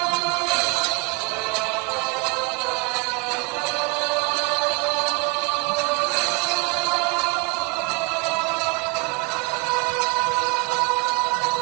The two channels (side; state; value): left; quieter; 28.9 dB